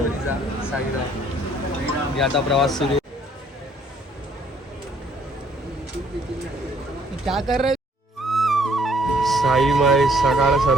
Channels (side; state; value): both; normal; correlation 0.63